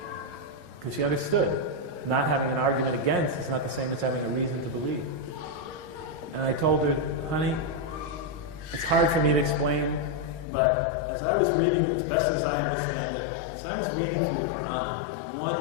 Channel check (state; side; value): drops out; right; at 10.5 s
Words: Because she understood not having an argument against is not the same as having a reason to believe. And I told her, honey, it's hard for me to explain, but as I was reading, as best as I understand it, as I was reading through the Quran, and one